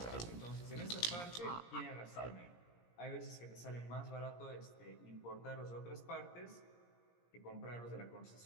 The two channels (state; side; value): late; right; 17 ms